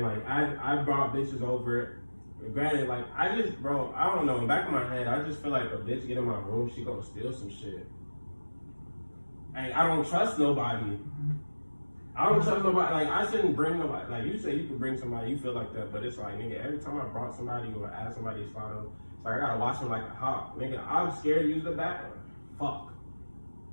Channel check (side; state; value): both; inverted; correlation -1.00